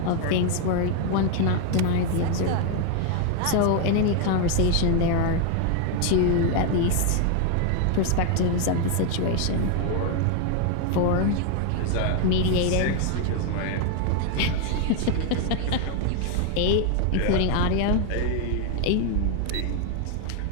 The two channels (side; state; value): both; different; correlation 0.00